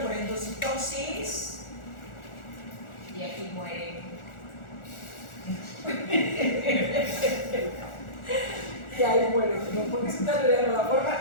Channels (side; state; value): right; late; 1.4 ms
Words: por endocitosis y aquí mueren. Y ahí mueren, no porque si están leyendo la